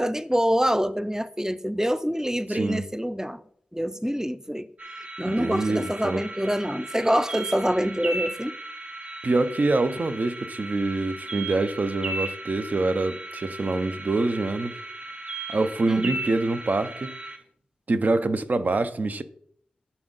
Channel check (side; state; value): both; normal; correlation 0.93